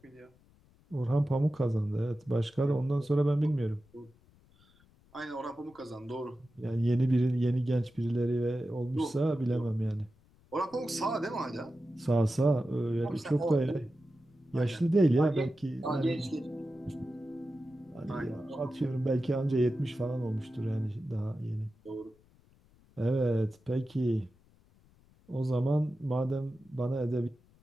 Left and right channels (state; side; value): noise; left; rumble, 30 dB below the sound